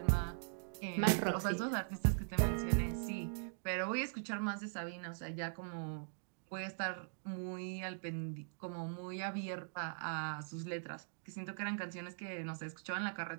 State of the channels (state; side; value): silent; left; digital silence